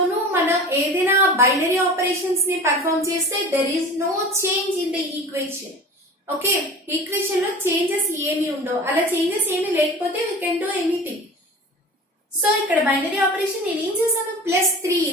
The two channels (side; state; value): both; normal; correlation 0.37